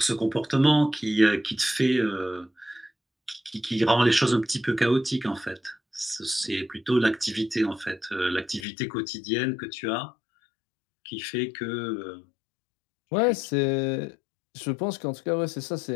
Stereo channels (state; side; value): drops out; right; at 8.7 s